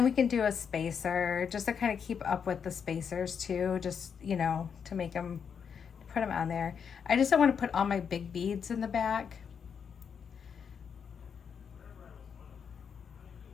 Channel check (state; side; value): quieter; right; 6.9 dB